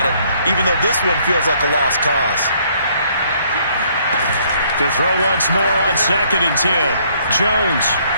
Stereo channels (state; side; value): inverted; both; correlation -0.65